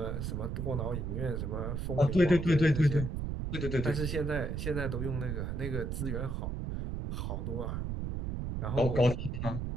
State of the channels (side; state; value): right; noise; rumble, 3 dB below the sound